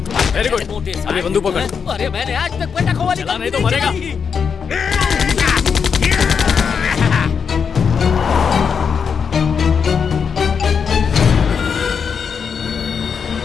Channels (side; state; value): right; quieter; 6.4 dB